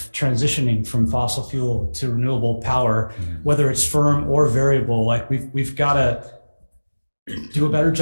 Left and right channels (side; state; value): both; inverted; correlation -1.00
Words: transitioning from fossil fuel to renewable power, whether it's firm or variable. We've got to do a better